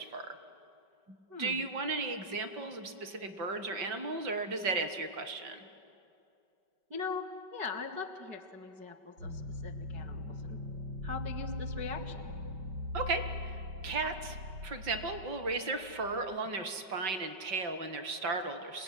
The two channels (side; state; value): left; late; 5.2 ms